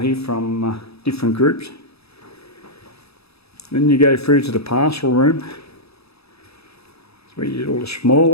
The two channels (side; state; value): right; late; 0.78 ms